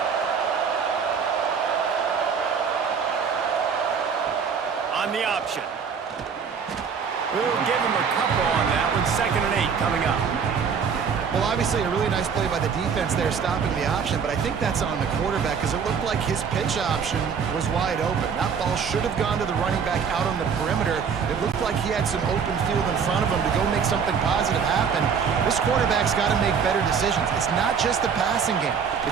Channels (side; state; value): left; quieter; 6.5 dB